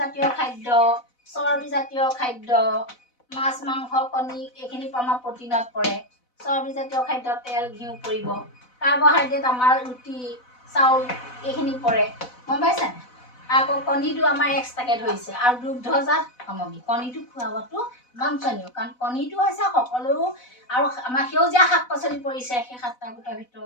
জাতীয় খাদ্য, চৰ্বি জাতীয় খাদ্য, মাছ মাংস কণী এইখিনি আমাৰ প্ৰটিনত পৰে। চৰ্বি জাতীয় খাদ্য তেল ঘিউ পৰিব। কাৰ্বহাইড্ৰেট আমাৰ ৰুটি চাউল এইখিনি পৰে, গম পাইছে। আকৌ কণীটো আমাৰ এক্সট্ৰাকে ধৰিছে আৰু দুগ্ধজাত সামগ্ৰী। কণীটো খোৱাবতো বাঞ্ছনীয়, কাৰণ কণীটো হৈছে সকলো। আৰু আমাৰ সেউজীয়া শাক পাচলি পৰিছে সেই 7টা গোটৰ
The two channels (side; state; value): right; late; 4.0 ms